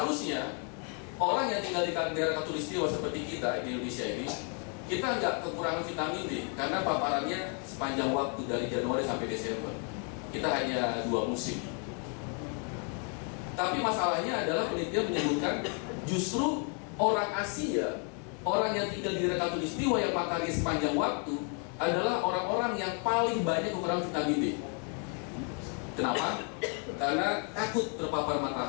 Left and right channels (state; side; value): quieter; right; 39.8 dB